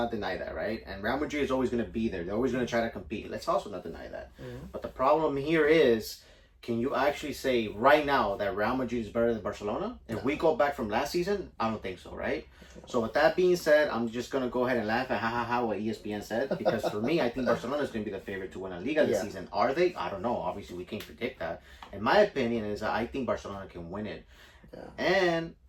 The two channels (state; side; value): identical; both; correlation 1.00